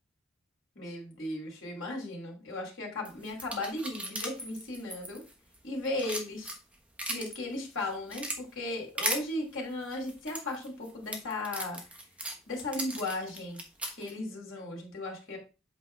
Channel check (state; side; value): normal; both; correlation 0.32